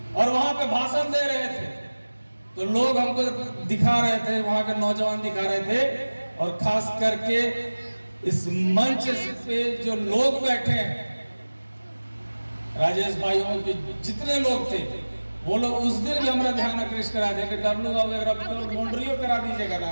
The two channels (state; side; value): inverted; both; correlation -1.00